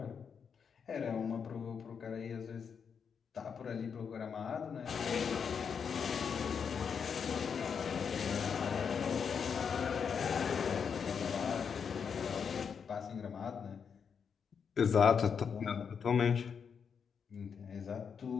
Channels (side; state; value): right; quieter; 6.7 dB